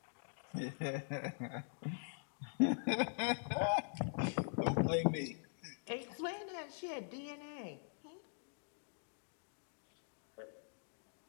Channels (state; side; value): silent; right; digital silence